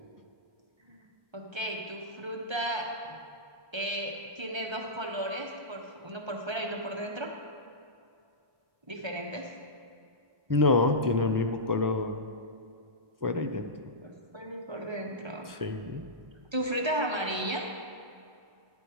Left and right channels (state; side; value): late; left; 1.3 ms